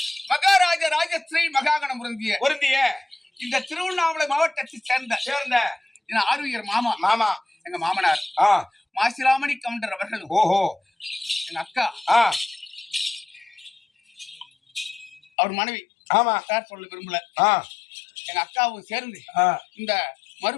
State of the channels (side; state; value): right; drops out; at 15.2 s